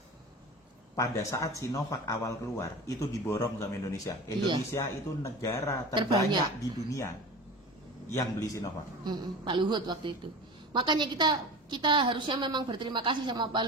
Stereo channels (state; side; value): normal; both; correlation 0.33